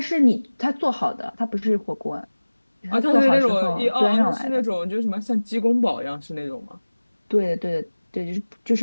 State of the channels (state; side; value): inverted; both; correlation -1.00